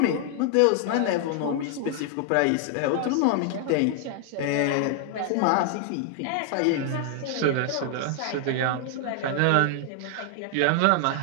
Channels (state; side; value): different; both; correlation 0.00